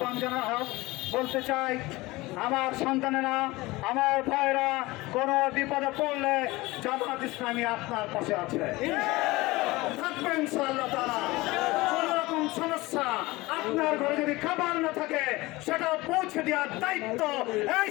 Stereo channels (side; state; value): right; quieter; 20.8 dB